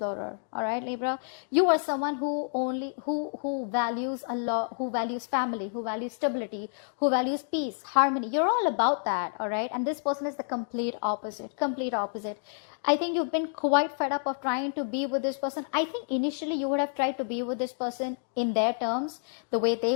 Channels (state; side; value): silent; right; digital silence